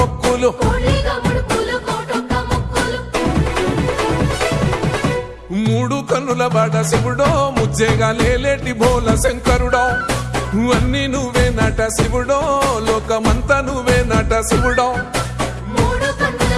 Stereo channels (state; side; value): identical; both; correlation 1.00